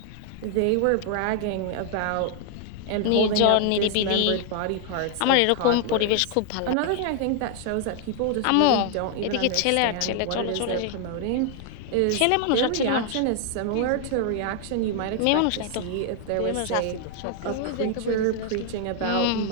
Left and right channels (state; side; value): different; both; correlation 0.00